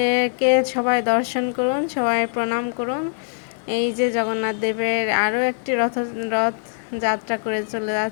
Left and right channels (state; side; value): silent; right; digital silence